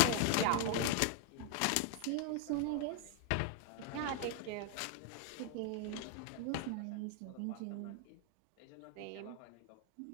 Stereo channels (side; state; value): both; different; correlation 0.01